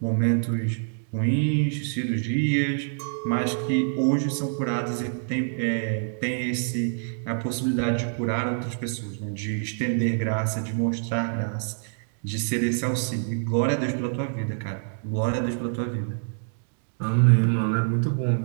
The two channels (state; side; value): silent; left; digital silence